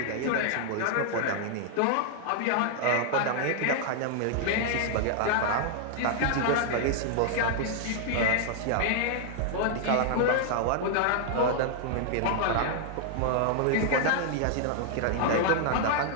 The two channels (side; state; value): both; different; correlation -0.01